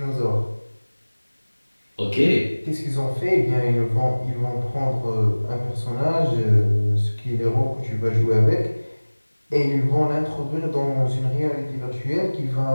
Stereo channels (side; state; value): both; inverted; correlation -1.00